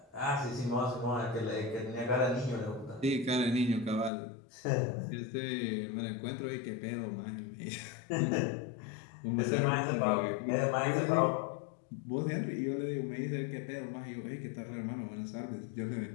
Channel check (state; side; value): drops out; right; at 4.1 s